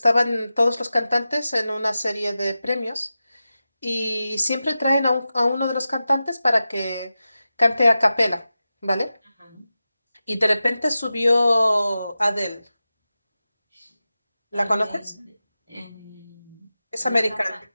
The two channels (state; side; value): inverted; both; correlation -0.94